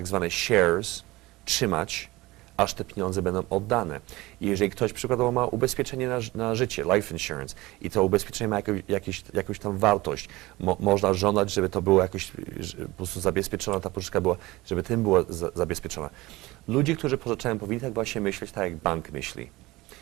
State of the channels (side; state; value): left; quieter; 20.2 dB